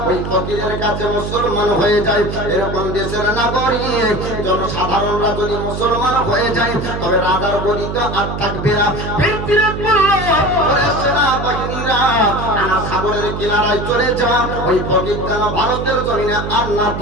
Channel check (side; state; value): right; noise; hum, 5 dB below the sound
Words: ওই ফকিরের কাছে মুসলমান হয়ে যায়। এরকম দেশের নাগরিক জনসাধারণরা যদি মুসলমান হয়ে যায়, তবে রাজার গদি তো আর থাকবে না। সেনাবাহিনীরা সাগরের কিনারায় চলে যাওয়া ওই ফকির যেন ভারতের জমিনে আর না